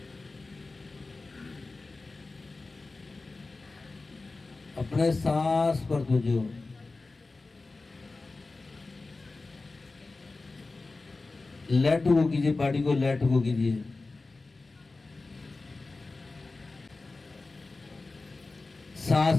अपने सांस पर तवज्जो। लेट गो कीजिए, बॉडी को लेट गो कीजिए।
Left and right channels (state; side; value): quieter; right; 3.5 dB